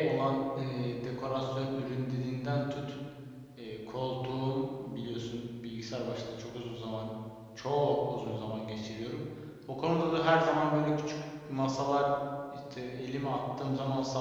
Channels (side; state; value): both; identical; correlation 1.00